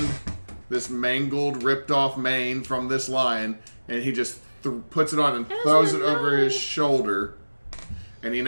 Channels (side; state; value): both; inverted; correlation -1.00